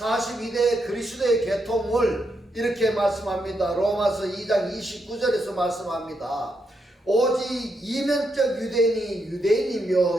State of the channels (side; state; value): both; normal; correlation 0.81